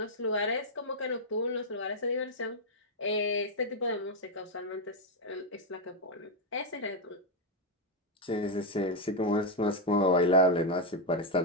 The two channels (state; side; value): normal; both; correlation 0.02